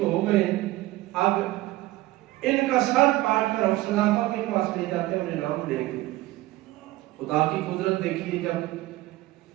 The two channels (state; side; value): quieter; left; 17.7 dB